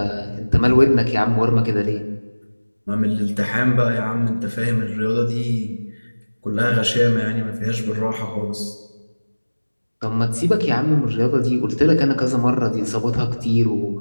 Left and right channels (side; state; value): both; inverted; correlation -1.00